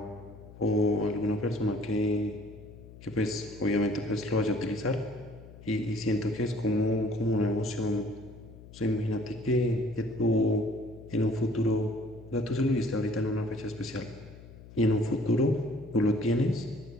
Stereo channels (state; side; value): noise; left; hum, 18 dB below the sound